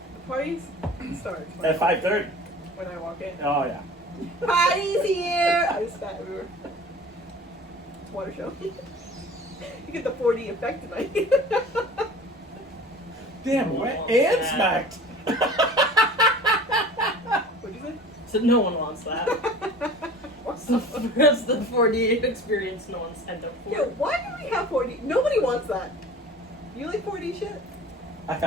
the parties starts At 5:30. when I walk in. Oh yeah. Party's here! I just spat everywhere. It's a water show. You get the 4D effect tonight. Damn, wet and smacked. What'd you say? So no one wants that. That's the 4D experience no one signed up for. Yeah, why do we have 4D? Nobody wants that. You like 4D shit? I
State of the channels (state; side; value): normal; both; correlation 0.42